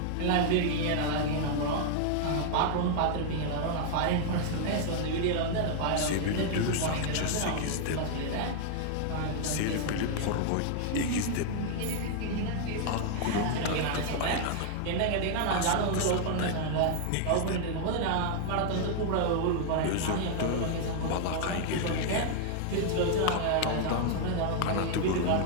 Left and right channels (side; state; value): both; different; correlation -0.01